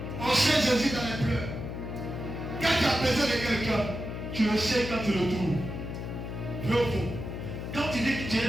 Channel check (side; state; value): left; noise; hum, 6 dB below the sound